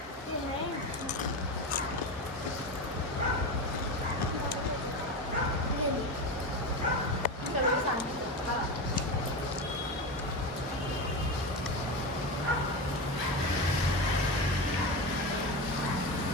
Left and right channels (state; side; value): normal; both; correlation 0.20